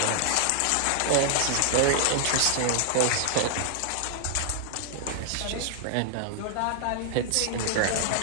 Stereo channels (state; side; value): different; both; correlation 0.00